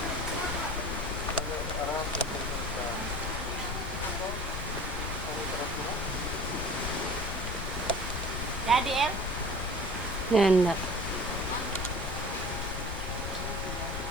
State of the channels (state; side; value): noise; left; rumble, 4 dB below the sound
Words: Jadi El, Nanda.